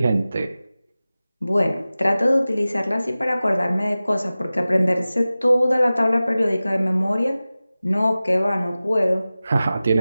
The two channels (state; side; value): inverted; both; correlation -0.96